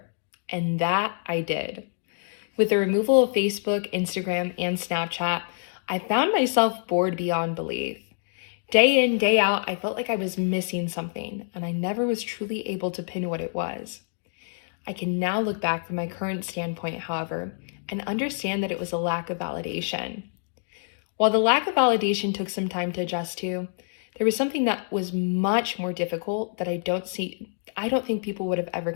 And that I did. With the removal of Facebook, Instagram, and Snapchat, I found myself bored beyond belief. Day in, day out, I felt like I was missing something, and I never was truly able to pin what it was. I can now look back from my current standpoint, however, and understand that it was a lack of validation. While the lack of validation took some time to adjust to, there was something that was much more difficult that I don't think people would have ever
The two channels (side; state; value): right; silent; digital silence